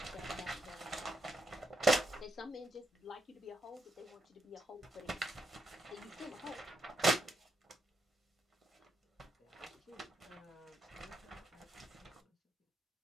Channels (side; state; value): both; normal; correlation 0.80